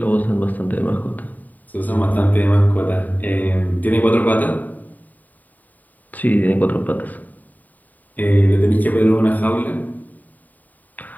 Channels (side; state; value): right; late; 0.082 ms